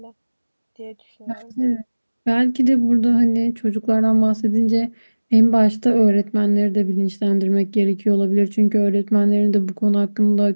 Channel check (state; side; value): inverted; both; correlation -1.00